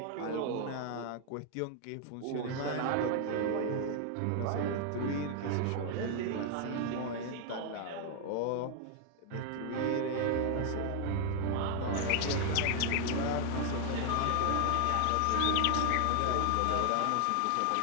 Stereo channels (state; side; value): different; both; correlation 0.00